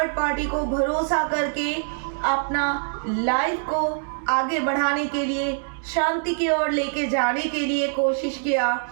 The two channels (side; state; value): left; silent; digital silence